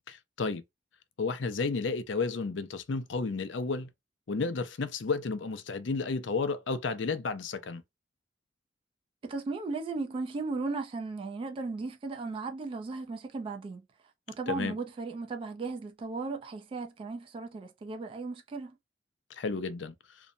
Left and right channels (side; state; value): both; normal; correlation 0.30